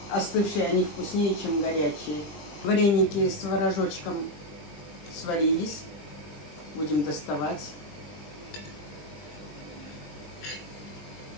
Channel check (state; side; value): late; right; 20 ms